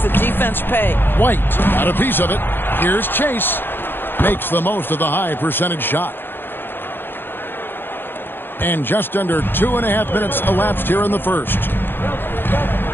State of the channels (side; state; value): right; late; 0.10 ms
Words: the defense pay. White got a piece of it. Here's Chase. Makes the most of the high percentage shot. And just under 2.5 minutes elapsed here in the first.